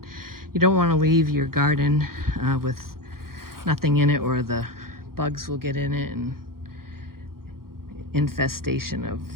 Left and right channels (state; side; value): late; left; 0.93 ms